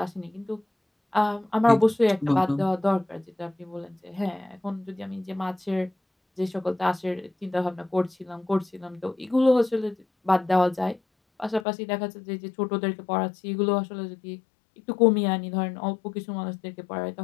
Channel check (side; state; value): right; drops out; at 11.7 s